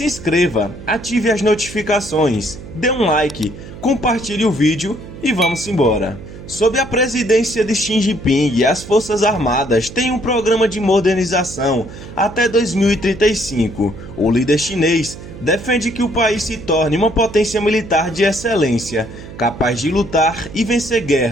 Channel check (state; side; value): noise; right; hum, 14 dB below the sound